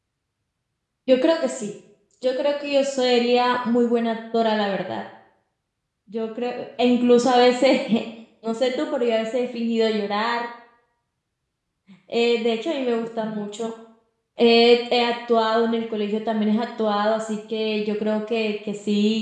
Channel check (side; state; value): both; identical; correlation 1.00